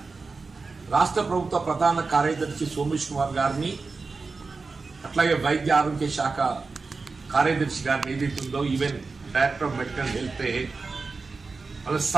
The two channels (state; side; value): quieter; left; 4.2 dB